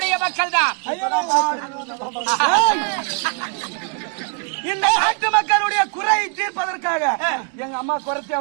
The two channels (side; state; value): left; quieter; 37.1 dB